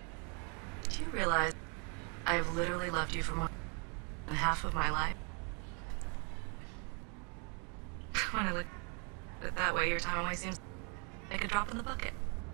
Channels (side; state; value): left; quieter; 36.1 dB